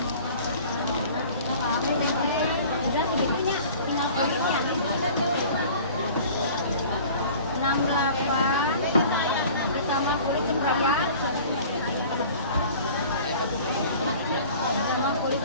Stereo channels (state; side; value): inverted; both; correlation -0.45